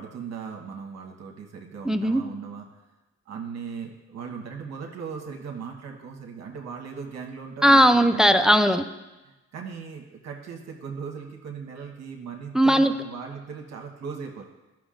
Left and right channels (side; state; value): both; normal; correlation 0.84